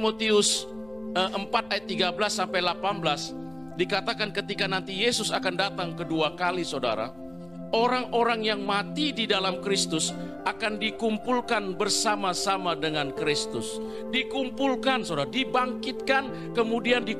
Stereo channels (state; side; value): noise; left; rumble, 24 dB below the sound